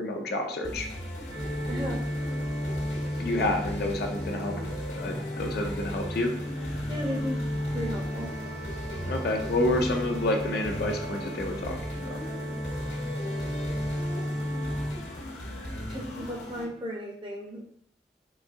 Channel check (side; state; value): both; normal; correlation 0.61